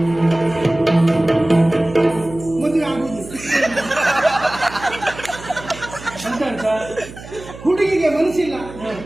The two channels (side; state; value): right; noise; hum, 15 dB below the sound